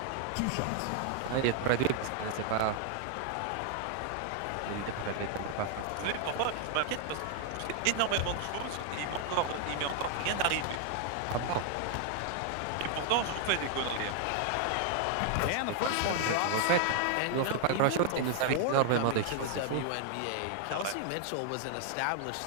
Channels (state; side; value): different; both; correlation 0.00